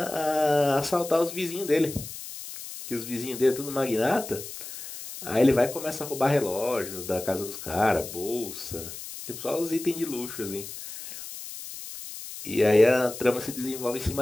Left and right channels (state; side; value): noise; left; hiss, 11 dB below the sound